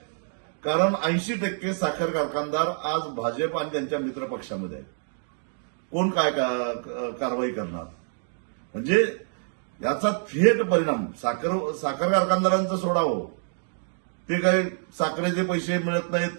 कारण 80% साखर कारखानदार आज भाजप आणि त्यांच्या मित्र पक्षामध्ये आहेत. कोण काय कारवाई करणार? म्हणजे याचा थेट परिणाम साखर कारखानदारांचं सोडावं, ते काही साखरेचे पैसे मिळत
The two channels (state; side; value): silent; left; 56 dB below the other